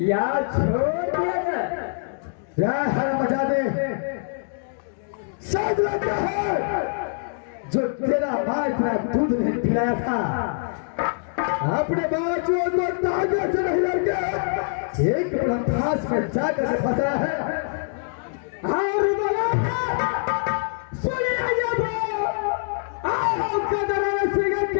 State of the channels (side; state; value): right; silent; digital silence